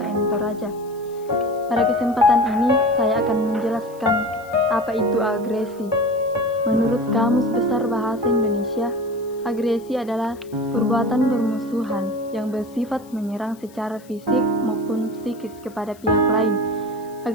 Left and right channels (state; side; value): noise; left; hiss, 26 dB below the sound